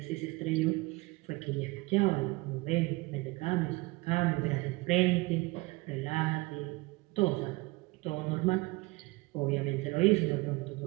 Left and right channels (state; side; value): quieter; left; 23.0 dB